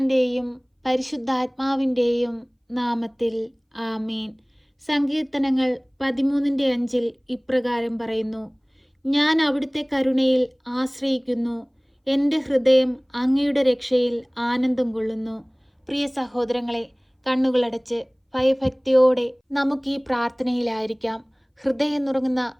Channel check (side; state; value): both; identical; correlation 1.00